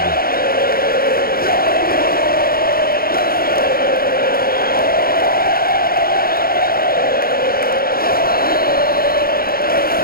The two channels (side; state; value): right; late; 0.43 ms